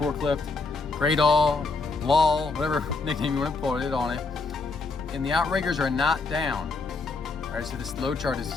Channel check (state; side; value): quieter; right; 3.9 dB